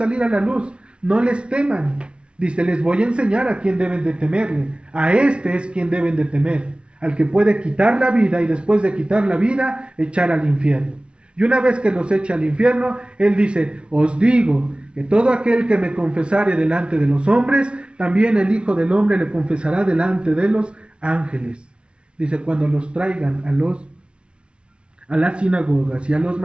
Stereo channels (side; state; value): left; late; 0.058 ms